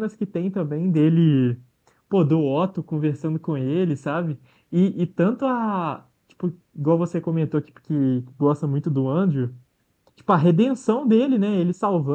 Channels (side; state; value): both; identical; correlation 1.00